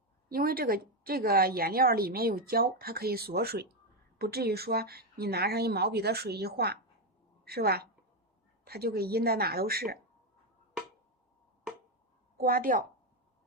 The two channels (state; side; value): normal; both; correlation 0.07